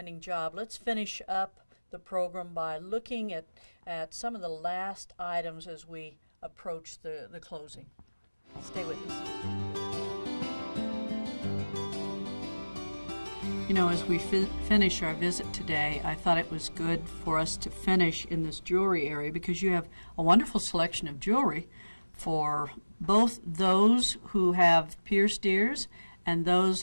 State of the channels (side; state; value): both; inverted; correlation -1.00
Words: job. Let's finish up the program by looking at some of the last items as we approach the closing. Stay with us. You know, as we finish our visit today, I thought it was good for us to finish in this jewelry area, because you have a wonderful selection of jewelry for both those who have pierced ears and those